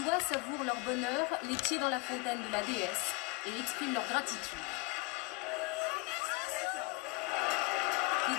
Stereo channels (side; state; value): right; quieter; 25.0 dB